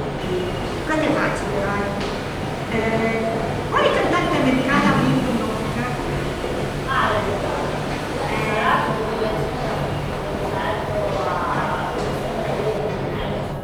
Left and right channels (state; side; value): identical; both; correlation 1.00